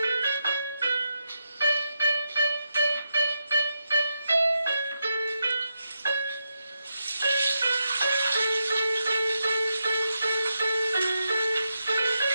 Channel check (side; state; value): both; inverted; correlation -0.85